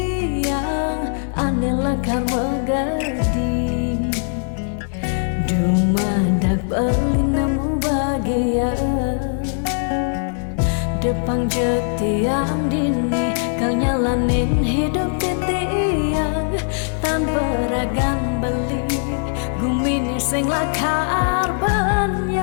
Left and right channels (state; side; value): silent; right; 63 dB below the other